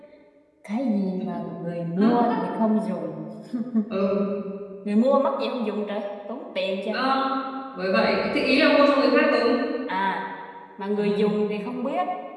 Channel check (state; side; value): identical; both; correlation 1.00